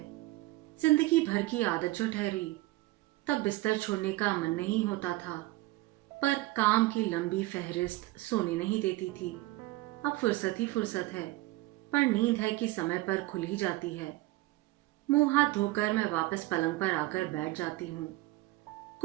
जिंदगी भर की आदत जो ठहरी, तब बिस्तर छोड़ने का मन नहीं होता था, पर काम की लंबी फहरिस्त सोने नहीं देती थी। अब फुर्सत ही फुर्सत है, पर नींद है कि समय पर खुल ही जाती है। मुंह हाथ धोकर मैं वापस पलंग पर आकर बैठ जाती हूँ।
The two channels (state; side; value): quieter; left; 18.9 dB